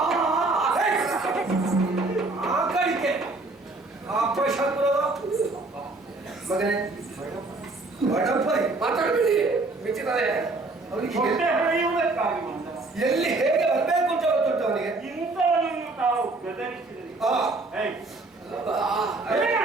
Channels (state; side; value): quieter; left; 3.3 dB